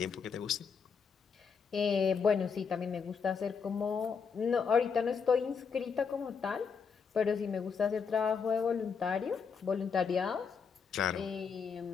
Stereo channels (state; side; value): quieter; right; 6.0 dB